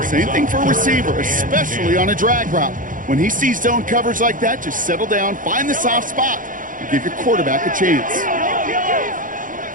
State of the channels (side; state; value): left; late; 0.39 ms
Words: Same thing for a receiver, especially on a drag route. When he sees zone coverage like that, just settle down, find the soft spot, and give your quarterback a chance.